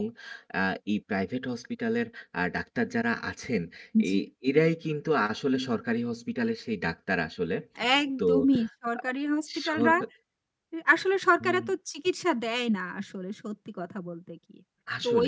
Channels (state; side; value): identical; both; correlation 1.00